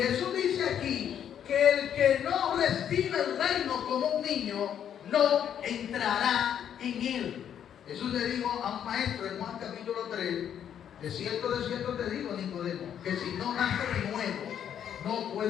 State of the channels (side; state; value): right; quieter; 9.3 dB